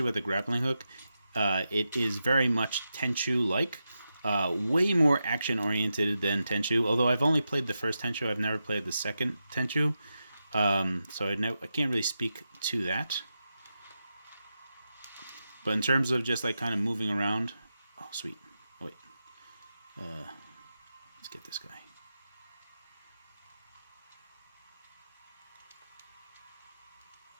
with the grappling hook, it is very much Tenchu-like. Way more action-oriented than Tenchu. Although I've only played the first Tenchu, I've never played the second Tenchu. So I can't really speak to that. But in terms of just like kind of moving around... Oh, sweet. Oh, wait. Let's get this guy.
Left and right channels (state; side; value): inverted; both; correlation -0.89